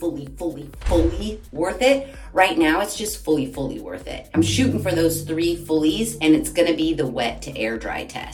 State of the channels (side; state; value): both; identical; correlation 1.00